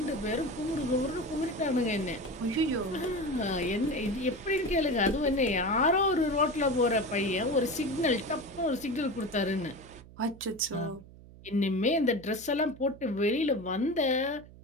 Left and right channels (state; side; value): noise; right; hum, 20 dB below the sound